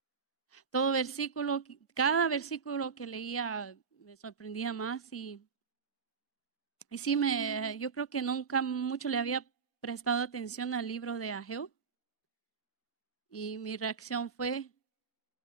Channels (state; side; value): quieter; left; 5.8 dB